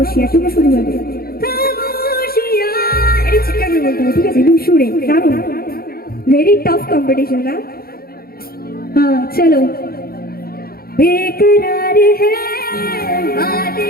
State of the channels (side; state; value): right; late; 0.44 ms